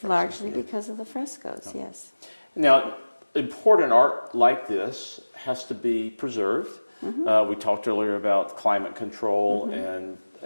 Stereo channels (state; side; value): inverted; both; correlation -1.00